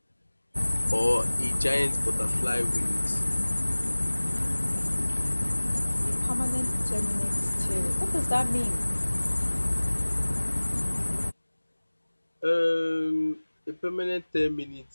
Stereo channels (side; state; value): both; inverted; correlation -1.00